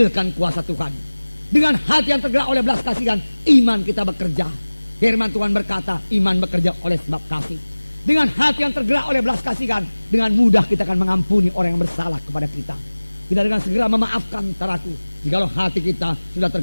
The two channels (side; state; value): both; inverted; correlation -1.00